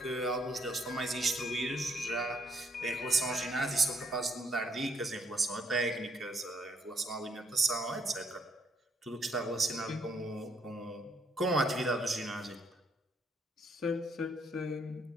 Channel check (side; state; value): both; normal; correlation 0.71